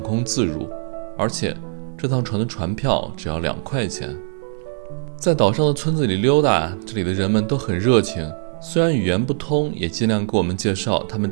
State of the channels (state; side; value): silent; left; digital silence